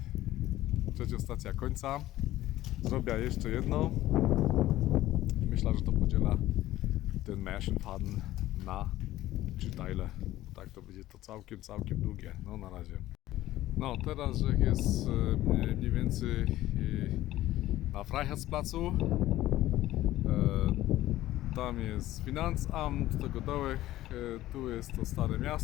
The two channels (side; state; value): right; quieter; 15.1 dB